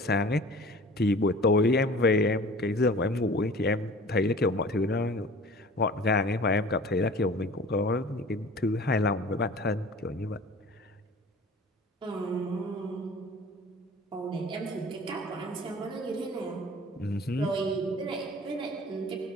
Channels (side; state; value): both; normal; correlation 0.44